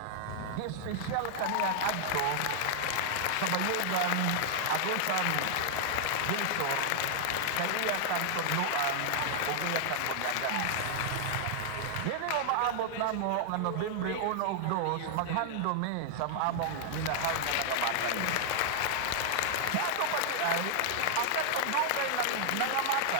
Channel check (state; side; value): different; both; correlation -0.01